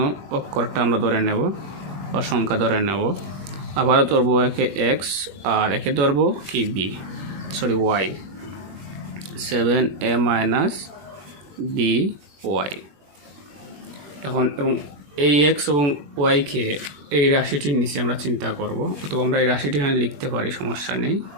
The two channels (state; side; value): late; left; 21 ms